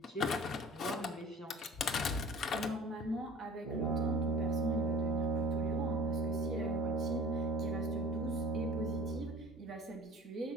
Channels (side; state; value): both; normal; correlation 0.44